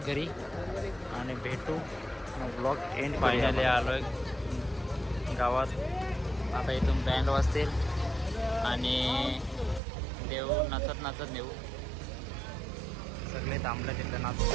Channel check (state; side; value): drops out; left; at 9.8 s